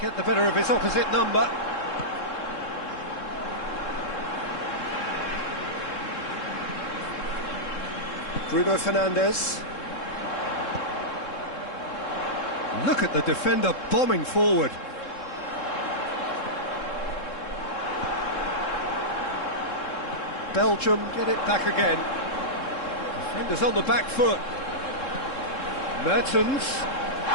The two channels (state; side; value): late; right; 3.7 ms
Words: get the better of his opposite number. Bruno Fernandes. Look at the defender bombing forward. Belgium get it back again. Defenders on the back foot. Mertens.